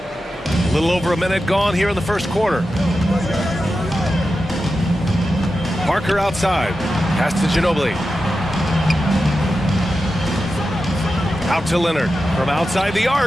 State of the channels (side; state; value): both; normal; correlation 0.91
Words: A little over a minute gone here in the first quarter. Parker outside. Pass to Ginobili. Out to Leonard. From outside the